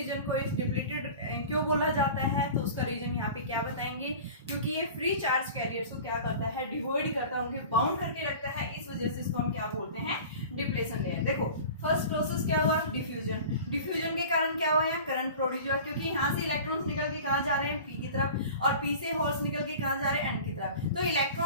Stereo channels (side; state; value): both; inverted; correlation -0.39